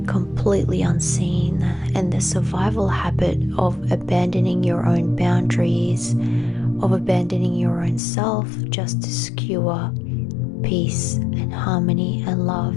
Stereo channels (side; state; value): right; drops out; at 8.0 s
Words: completely unseen, and the survival habit of abandoning your own boundaries, of abandoning your own self just to skewer peace and harmony and love,